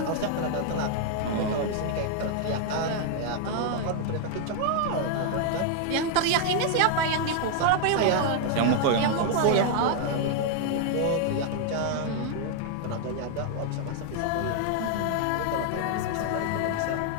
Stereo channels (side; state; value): both; different; correlation 0.00